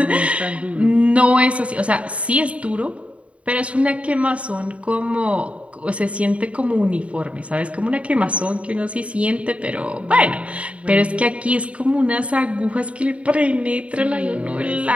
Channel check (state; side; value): late; left; 0.063 ms